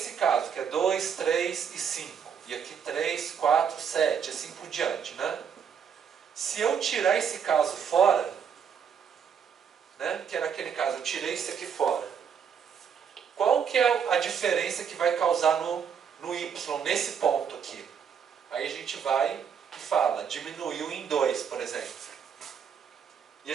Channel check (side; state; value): left; quieter; 7.4 dB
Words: caso, que é 2, 3 e 5, e aqui 3, 4, 7, assim por diante, né? Se eu tirar esse caso fora, né, que era aquele caso, eu tirei esse aqui fora, qual que é a diferença que vai causar no y, nesse ponto aqui? Aí a gente vai e fala, diminuiu em 2, por exemplo. E